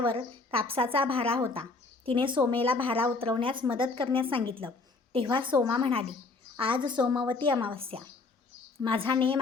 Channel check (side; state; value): right; quieter; 3.8 dB